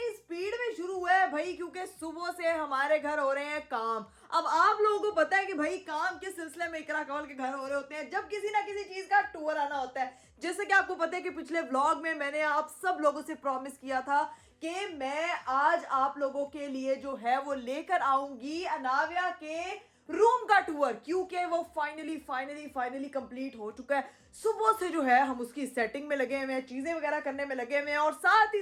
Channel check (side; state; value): both; identical; correlation 1.00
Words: स्पीड में शुरू हुआ है भाई, क्योंकि सुबह से हमारे घर हो रहे हैं काम। अब आप लोगों को पता है कि भाई काम के सिलसिले में इकरा कंवल के घर हो रहे होते हैं जब किसी ना किसी चीज का टूर आना होता है। जैसे कि आपको पता है कि पिछले व्लॉग में मैंने आप सब लोगों से प्रॉमिस किया था कि मैं आज आप लोगों के लिए जो है वो लेकर आऊंगी अनाव्या के रूम का टूर, क्योंकि वो फाइनली कंप्लीट हो चुका है। सुबह से जो है हम उसकी सेटिंग में लगे हुए हैं, चीजें वगैरह करने में लगे हुए हैं और साथ ही